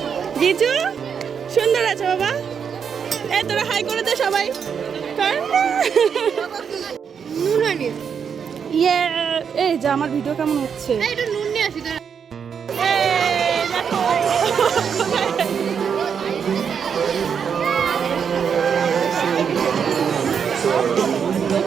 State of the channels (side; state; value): left; quieter; 7.0 dB